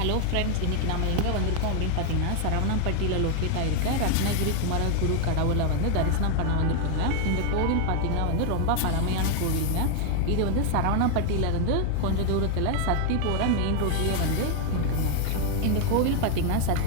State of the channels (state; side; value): different; both; correlation 0.01